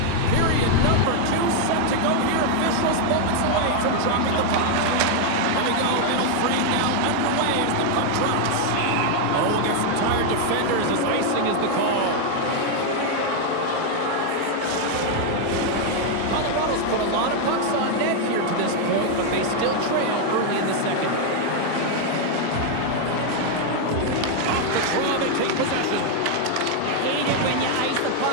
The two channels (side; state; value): both; different; correlation 0.00